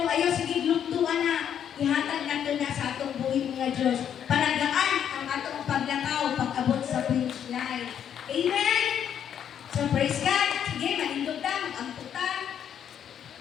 ayaw sige gluktuan na, ihatag na to na sa atong buhay mga Diyos. Palagaan ang atong paglakaw, pag-abot sa finish line. Amen? So praise God. Sige, malindog na, mag-amputan.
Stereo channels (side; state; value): right; quieter; 9.1 dB